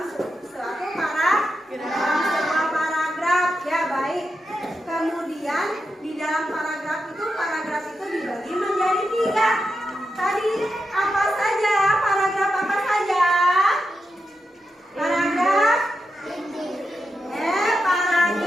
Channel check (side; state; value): both; normal; correlation 0.87